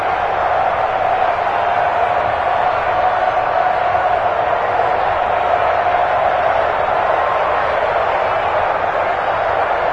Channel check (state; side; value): identical; both; correlation 1.00